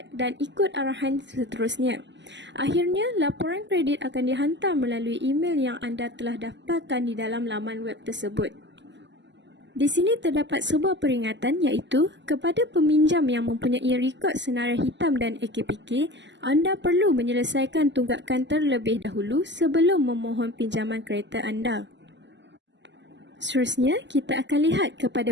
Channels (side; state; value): left; late; 0.53 ms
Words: dan ikut arahan seterusnya. Akhirnya, laporan kredit akan dihantar melalui email yang anda telah daftarkan di dalam laman web tersebut. Di sini terdapat sebuah peringatan iaitu kepada peminjam yang mempunyai rekod senarai hitam dan AKPK, anda perlu menyelesaikan tunggakan terlebih dahulu sebelum memohon pinjaman kereta anda. Seterusnya, kita akan lihat